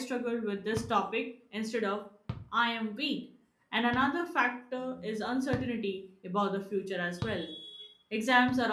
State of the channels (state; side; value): identical; both; correlation 1.00